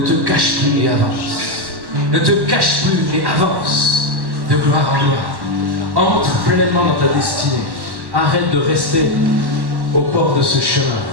cache plus et avance. Ne te cache plus et avance de gloire en gloire. Entre pleinement dans ta destinée. Arrête de rester au bord de ce chemin,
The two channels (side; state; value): left; late; 1.1 ms